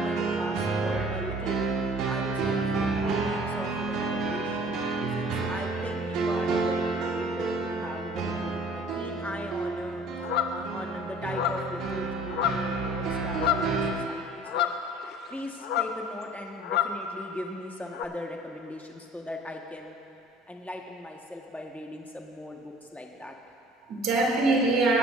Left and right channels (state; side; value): normal; both; correlation 0.50